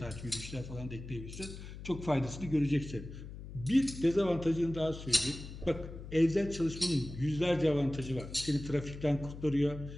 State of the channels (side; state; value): left; noise; hum, 12 dB below the sound